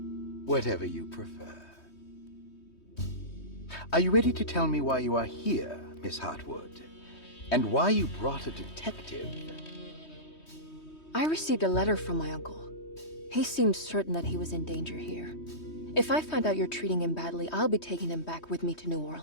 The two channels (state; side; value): late; right; 3.2 ms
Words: Whatever you prefer. Are you ready to tell me why you are here, Miss Heartwood? And why you brought a detective? I received a letter from my uncle. He seems certain that he was in danger here. If I find out you're treating him badly, I'll be taking him back with me to New